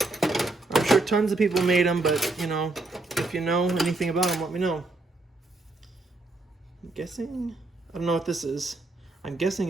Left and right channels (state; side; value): quieter; left; 3.1 dB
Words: I'm sure tons of people made them, but if you know anything about them, let me know. I'm guessing, I don't know what this is. I'm guessing